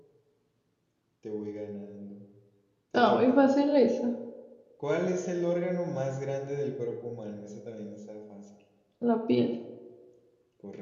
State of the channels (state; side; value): identical; both; correlation 1.00